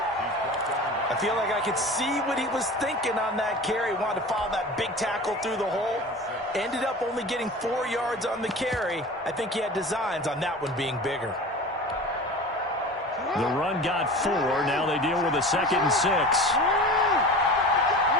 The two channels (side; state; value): both; normal; correlation 0.36